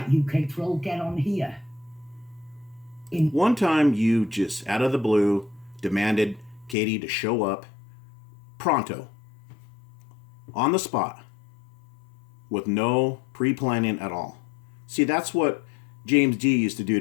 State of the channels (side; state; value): right; drops out; at 6.8 s